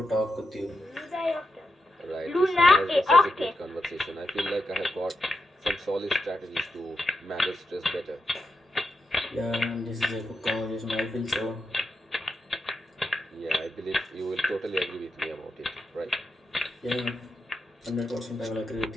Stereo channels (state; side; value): normal; both; correlation 0.86